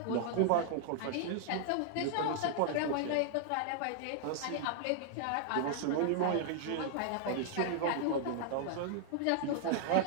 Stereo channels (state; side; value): different; both; correlation -0.01